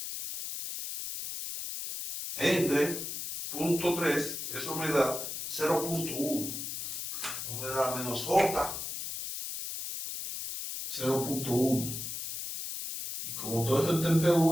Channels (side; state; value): left; noise; hiss, 5 dB below the sound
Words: entre 0.3, eso me da 0.1. No me da menos J 0.1. Y como todo eso está en